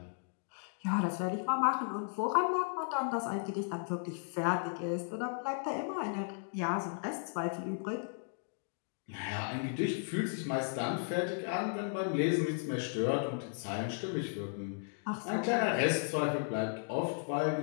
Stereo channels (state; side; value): silent; right; digital silence